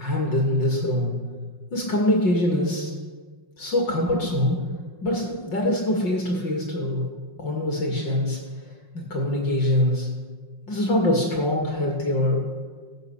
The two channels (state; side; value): late; right; 5.6 ms